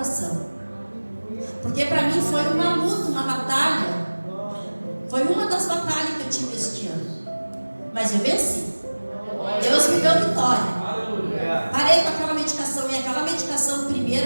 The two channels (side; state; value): both; inverted; correlation -1.00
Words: Porque para mim foi uma luta, uma batalha. Foi uma das batalhas que eu tive este ano. Mas eu venci. Deus me deu vitória. Parei com aquela medicação. E aquela medicação